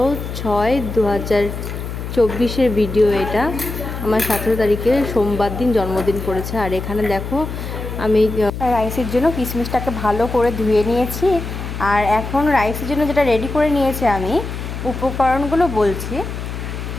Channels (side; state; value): left; noise; hum, 7 dB below the sound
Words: ভিডিও এটা। আমার 17 তারিখে সোমবার দিন জন্মদিন পড়েছে। আর এখানে দেখো আমি রাইসের জন্য কিশমিশটাকে ভালো করে ধুয়ে নিয়েছি। আর এখন রাইসের জন্য যেটা রেডি করে নিয়েছি আমি, উপকরণগুলো বলছি।